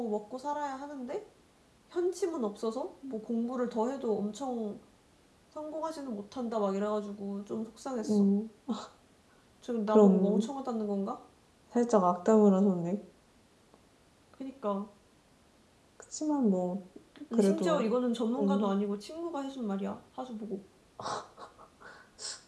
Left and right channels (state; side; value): identical; both; correlation 1.00